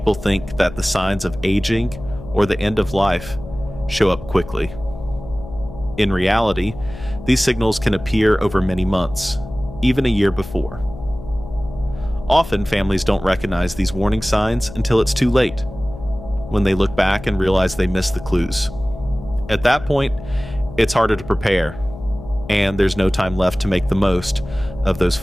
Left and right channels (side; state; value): left; noise; hum, 14 dB below the sound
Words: think that the signs of aging or the end of life show up quickly. In reality, these signals can appear over many months, even a year before. Often, families don't recognize these warning signs until it's too late, when they look back and realize they missed the clues. At that point, it's harder to prepare, and there's no time left to make the most of those